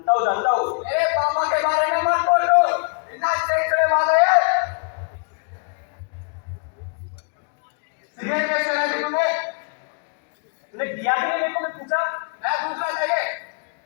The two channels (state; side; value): quieter; right; 38.5 dB